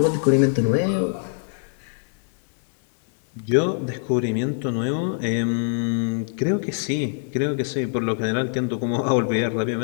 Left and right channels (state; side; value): silent; right; 63 dB below the other